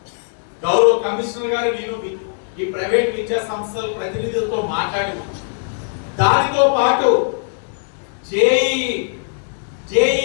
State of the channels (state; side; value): silent; right; 66 dB below the other